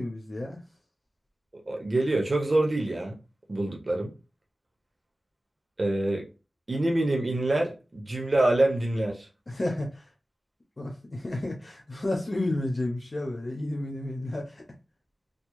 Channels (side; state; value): both; normal; correlation 0.95